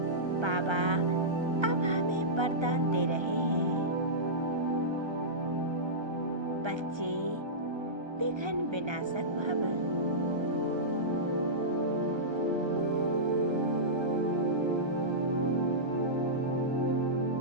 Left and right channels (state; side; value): late; left; 1.3 ms